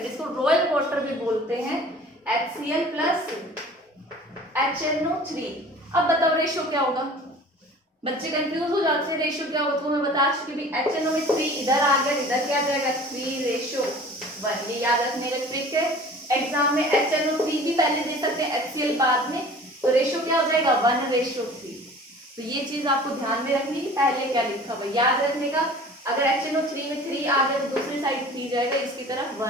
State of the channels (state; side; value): normal; both; correlation 0.44